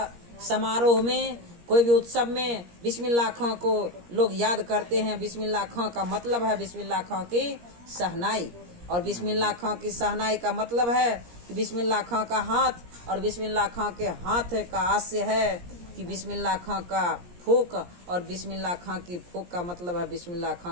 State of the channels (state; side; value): late; left; 17 ms